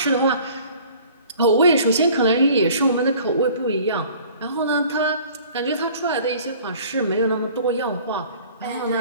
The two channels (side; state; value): both; inverted; correlation -0.50